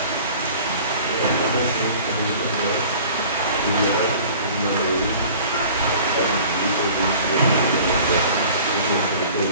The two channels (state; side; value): inverted; both; correlation -0.46